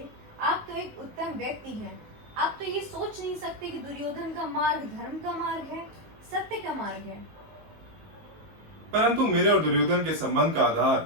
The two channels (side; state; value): left; late; 19 ms